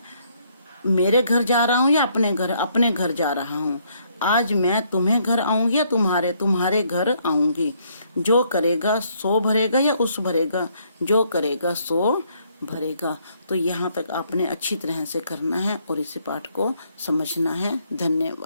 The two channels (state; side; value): inverted; both; correlation -0.69